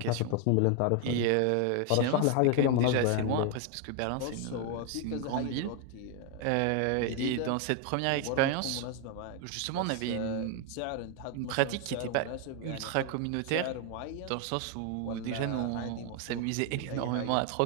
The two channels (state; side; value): different; both; correlation 0.01